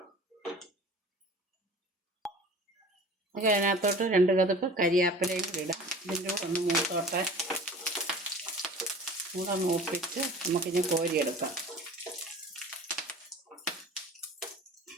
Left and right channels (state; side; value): normal; both; correlation 0.42